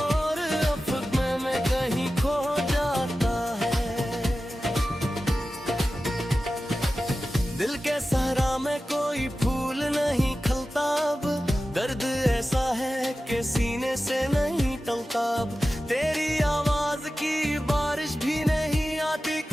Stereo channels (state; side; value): normal; both; correlation 0.94